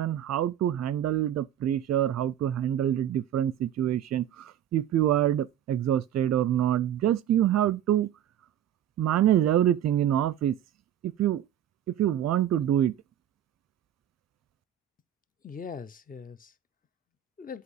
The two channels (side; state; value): left; quieter; 10.9 dB